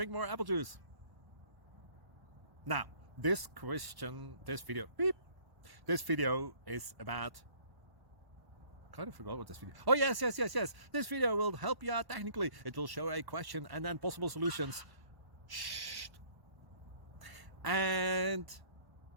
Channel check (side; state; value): left; late; 1.1 ms